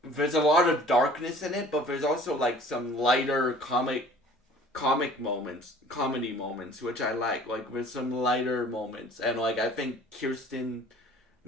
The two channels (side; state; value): both; normal; correlation 0.49